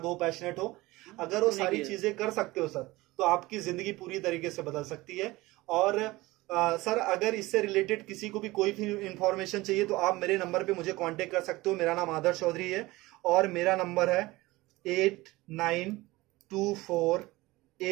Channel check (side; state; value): left; quieter; 20.0 dB